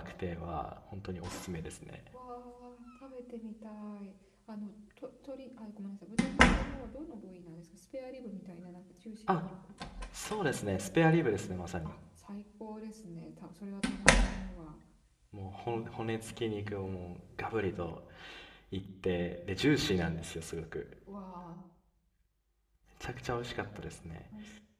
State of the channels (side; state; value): both; identical; correlation 1.00